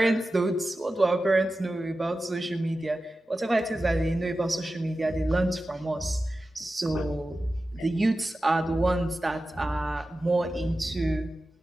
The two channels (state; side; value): normal; both; correlation 0.94